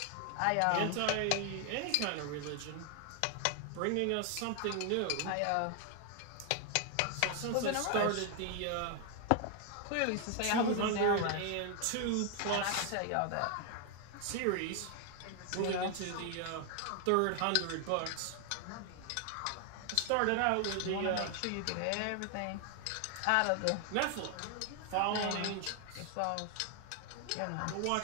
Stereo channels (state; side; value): different; both; correlation 0.00